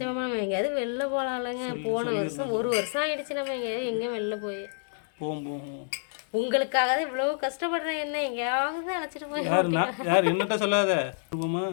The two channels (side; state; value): right; silent; digital silence